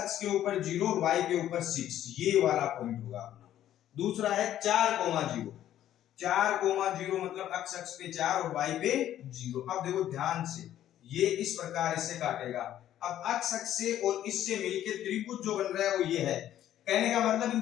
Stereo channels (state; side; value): quieter; right; 11.8 dB